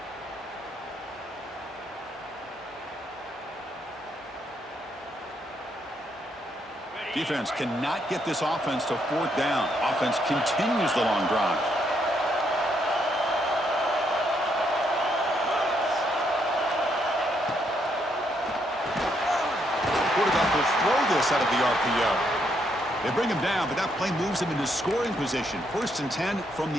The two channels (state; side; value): normal; both; correlation 0.75